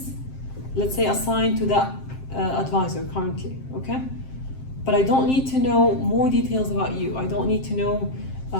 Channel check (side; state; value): right; late; 7.6 ms